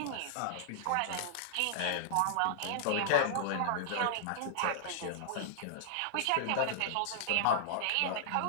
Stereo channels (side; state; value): both; different; correlation -0.01